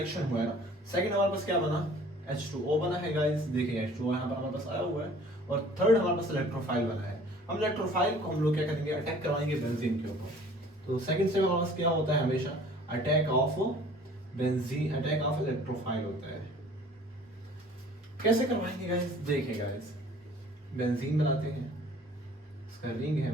हुआ है ना। सेकंड हमारे पास क्या बना, H2O बना है गाइस, देखिए H2O यहाँ पर हमारे पास आया हुआ है। और थर्ड हमारे पास इलेक्ट्रोफाइल बना है। हम इलेक्ट्रोफाइल को हम लोग क्या करेंगे, अटैक करवाएंगे बेंजीन के ऊपर। तो सेकंड स्टेप हमारे पास क्या होता है, हमेशा attack of benzene, attack of electrophile होता है। कैसे करवाएंगे गाइस, देखिए गाइस बेंजीन बनाते हैं, इसका रिंग है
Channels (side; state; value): both; normal; correlation 0.51